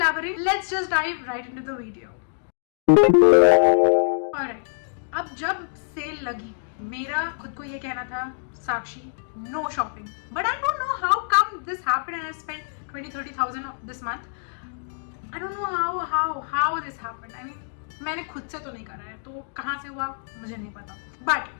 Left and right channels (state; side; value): silent; right; digital silence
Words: let's just dive right into the video. Alright, अब जब cell लगी मेरा खुद को ये कहना था Sakshi no shopping, but I don't know how come this happened and I spent 20-30,000 this month. I don't know how this happened. I mean मैंने खुद से तो नहीं करा है तो कहाँ से हुआ मुझे नहीं पता,